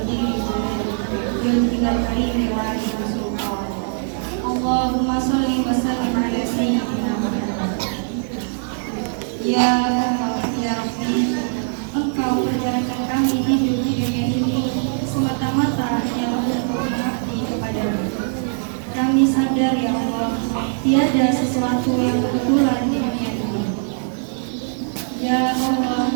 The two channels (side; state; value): left; silent; 65 dB below the other